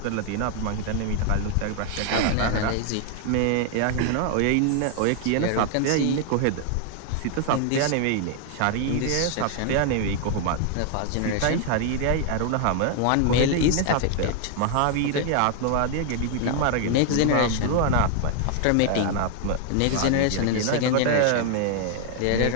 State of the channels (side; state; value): both; different; correlation 0.00